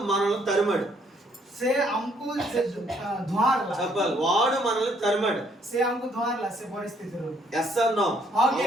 మనల్ని తరిమాడు. ସେ ଆମକୁ ଧୂଆଁଲା। చెప్పాలి, వాడు మనల్ని తరిమాడు. ସେ ଆମକୁ ଧୂଆଁଲା ସେ ପରିସ୍ଥିତିରୁ। Yes or no?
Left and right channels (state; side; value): normal; both; correlation 0.67